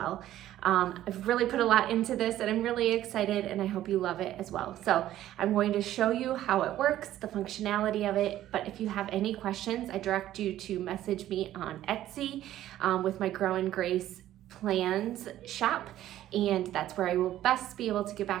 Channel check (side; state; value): left; quieter; 13.2 dB